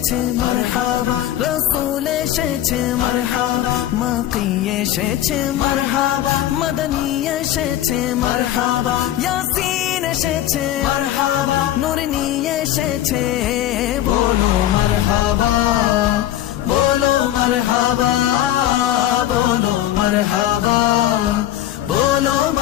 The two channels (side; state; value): right; quieter; 12.7 dB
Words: এসেছে মারহাবা, রাসূল এসেছে মারহাবা, মাকি এসেছে মারহাবা, মদনী এসেছে মারহাবা, ইয়াসিন এসেছে মারহাবা, নূর নিয়ে এসেছে। বলো মারহাবা, বলো মারহাবা, বলো মারহাবা, বলো